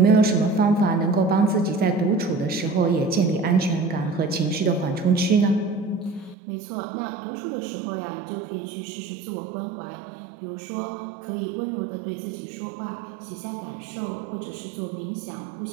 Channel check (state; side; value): drops out; left; at 6.4 s